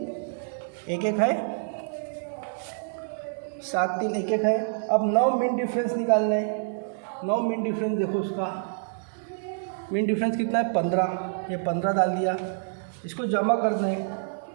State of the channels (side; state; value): left; silent; digital silence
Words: 1 1 है, 7 3 1 1 है। अब 9 मीन डिफरेंस निकालने हैं, 9 मीन डिफरेंस देखो, उसका मीन डिफरेंस कितना है? 15, ये 15 डाल दिया। इसको जमा करना है,